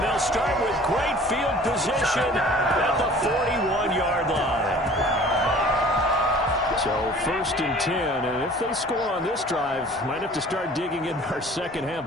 they'll start with great field position at the 41-yard line. So 1st and 10, and if they score on this drive, might have to start digging in our second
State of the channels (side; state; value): both; normal; correlation 0.48